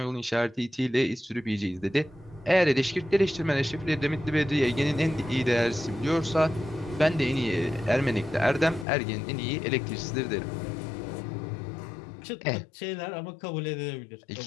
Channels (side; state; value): right; drops out; at 8.8 s